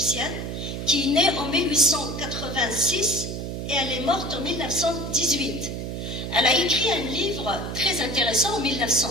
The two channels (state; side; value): noise; right; hum, 5 dB below the sound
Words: qui est née en 1886 et elle est morte en 1918. Elle a écrit un livre très intéressant en